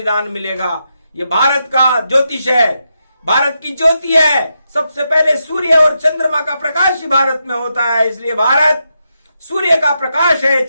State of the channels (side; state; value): both; inverted; correlation -0.84